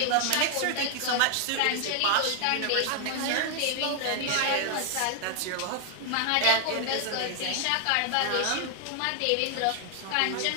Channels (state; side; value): different; both; correlation 0.00